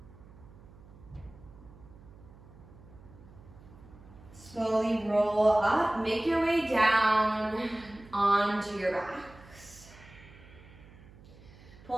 Slowly roll up, make your way down onto your backs.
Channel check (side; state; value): right; noise; hum, 21 dB below the sound